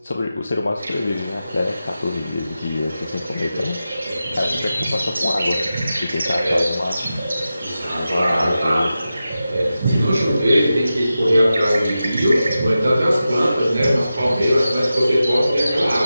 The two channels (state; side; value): inverted; both; correlation -0.92